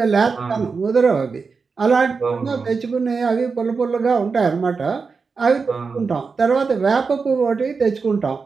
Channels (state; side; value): quieter; left; 4.9 dB